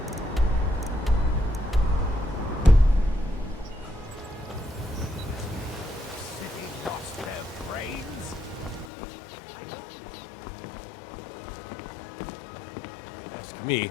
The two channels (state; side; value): drops out; right; at 8.9 s